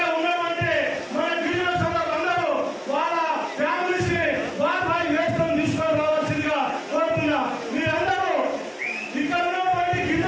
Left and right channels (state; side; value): identical; both; correlation 1.00